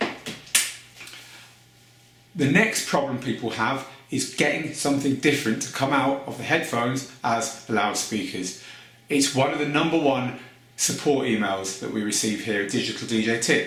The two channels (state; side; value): identical; both; correlation 1.00